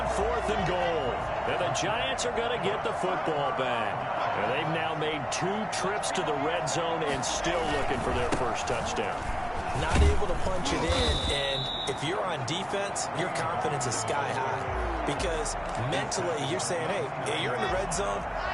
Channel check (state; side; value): identical; both; correlation 1.00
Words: 4th and goal. And the Giants are going to get the football back. And they've now made 2 trips to the red zone and still looking for their first touchdown. Not able to punch it in, and if you're on defense, your confidence is sky high. Because mentally, you're saying, hey, you're in the red zone.